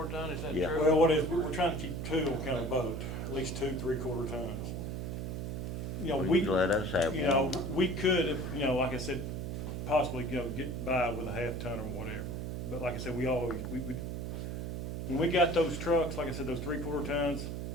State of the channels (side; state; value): right; noise; hum, 4 dB below the sound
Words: ton, is that Yeah. true? Well, what is, we're trying to keep 2 on county boat, at least 2 3/4 tons. Well, We, you let us have one. we could, if, like I said, possibly, get by with a 1/2 ton or whatever. But like I said, we always, when we got those trucks, like I said, those 3/4 tons,